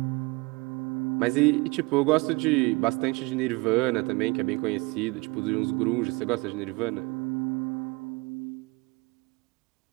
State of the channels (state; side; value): quieter; left; 25.6 dB